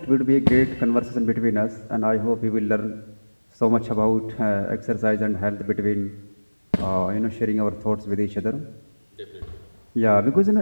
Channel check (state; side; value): inverted; both; correlation -1.00